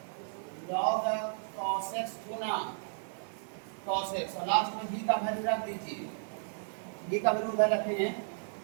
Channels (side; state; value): left; silent; 55 dB below the other